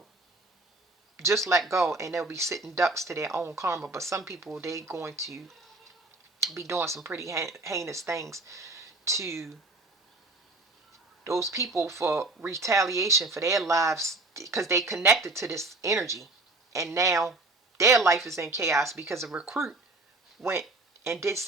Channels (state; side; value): quieter; left; 3.0 dB